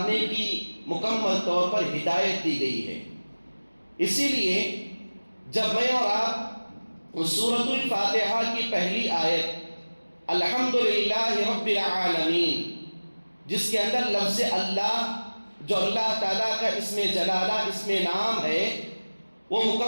کی مکمل طور پر ہدایت دی گئی ہے۔ اسی لیے جب میں اور آپ سورۃ الفاتحہ کی پہلی آیت الحمدللہ رب العالمین، جس کے اندر لفظ اللہ، جو اللہ تعالیٰ کا اسم جلالہ، اسم نام ہے، وہ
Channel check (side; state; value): both; inverted; correlation -1.00